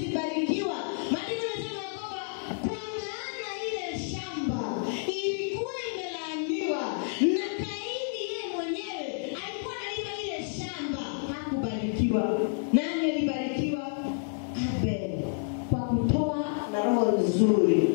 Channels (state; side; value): silent; right; digital silence